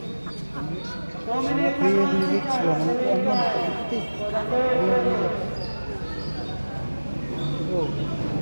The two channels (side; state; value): both; inverted; correlation -1.00